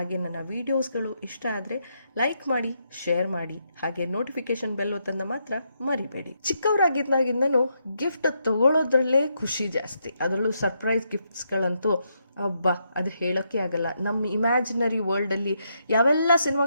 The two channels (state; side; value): inverted; both; correlation -0.79